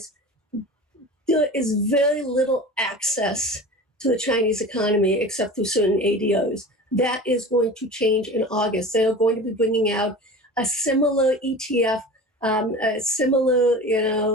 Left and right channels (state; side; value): normal; both; correlation 0.35